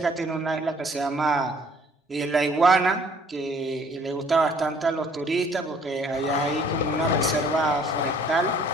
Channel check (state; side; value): normal; both; correlation 0.58